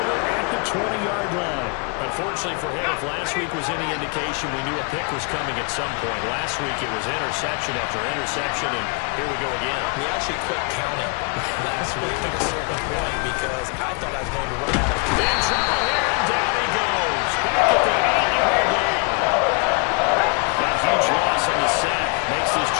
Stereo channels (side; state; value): right; quieter; 34.3 dB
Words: at the 20-yard line. Unfortunately for him, if last week was any indication, we knew a pick was coming at some point. Last week it was interception after interception, and here we go again. We actually quit counting last week at a certain point because I thought I was going to run out of time. In trouble here, and down he goes. Back at the 8-yard line. That huge loss on the sack makes this